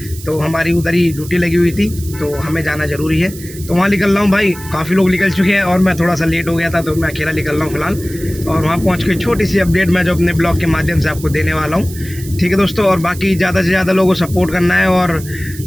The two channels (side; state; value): right; noise; hiss, 16 dB below the sound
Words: तो हमारी उधर ही ड्यूटी लगी हुई थी, तो हमें जाना ज़रूरी है, तो वहाँ निकल रहा हूँ भाई। काफ़ी लोग निकल चुके हैं और मैं थोड़ा सा लेट हो गया था, तो मैं अकेला निकल रहा हूँ फिलहाल। और वहाँ पहुँच के छोटी सी अपडेट मैं जो अपने ब्लॉग के माध्यम से आपको देने वाला हूँ, ठीक है दोस्तों। और बाकी ज़्यादा से ज़्यादा लोगों को सपोर्ट करना है और